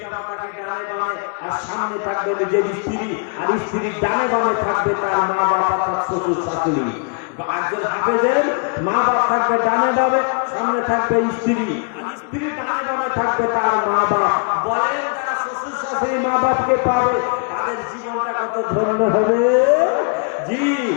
মাতাকে ডানে বামে, আর সামনে থাকবে নিজের স্ত্রী, আর স্ত্রীর ডানে বামে থাকবে তার মা বাবা, তার শ্বশুর শাশুড়ি। একজন হাফেজের মা বাপ থাকবে ডানে বামে, সামনে থাকবে স্ত্রী, আর স্ত্রীর ডানে বামে থাকবে তার মা বাপ। বলেন যারা শ্বশুর শাশুড়ি মা বাপকে পাবে তাদের জীবনটা কত ধন্য হবে। জি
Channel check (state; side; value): quieter; right; 38.3 dB